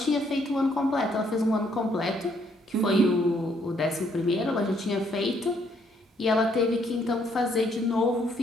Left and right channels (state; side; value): normal; both; correlation 0.69